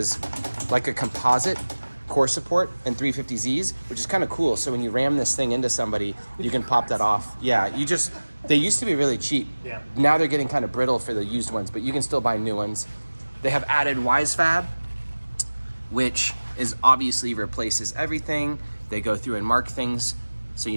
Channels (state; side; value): inverted; both; correlation -1.00